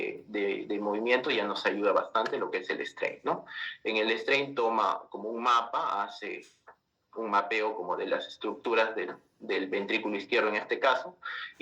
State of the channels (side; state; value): both; identical; correlation 1.00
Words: movimiento ya nos ayuda bastante lo que es el strain, ¿no? En el strain toma como un mapa, hace un mapeo como de las estructuras del ventrículo izquierdo en este caso,